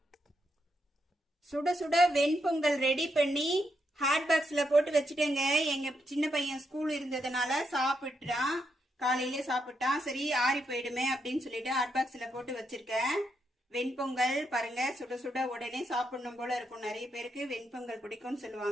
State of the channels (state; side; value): normal; both; correlation 0.81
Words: சுட சுட வெண்பொங்கல் ரெடி பண்ணி ஹாட் பாக்ஸ்ல போட்டு வச்சுட்டேங்க. எங்க சின்ன பையன் ஸ்கூல் இருந்ததுனால சாப்பிட்டான், காலையிலே சாப்பிட்டான். சரி ஆறி போயிடுமே அப்படின்னு சொல்லிட்டு ஹாட் பாக்ஸ்ல போட்டு வச்சிருக்கேன். வெண்பொங்கல் பாருங்க, சுட சுட உடனே சாப்பிடணும் போல இருக்கும். நிறைய பேருக்கு வெண்பொங்கல் பிடிக்கும்னு